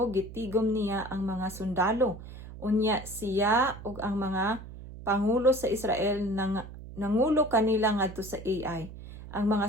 gitigom niya ang mga sundalo. Unya siya ug ang mga pangulo sa Israel nangulo kanila ngadto sa Ai. Ang mga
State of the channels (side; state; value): right; noise; hum, 14 dB below the sound